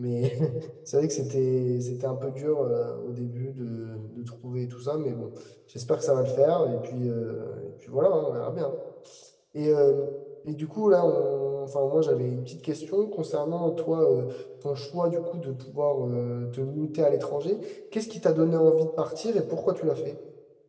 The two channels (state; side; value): identical; both; correlation 1.00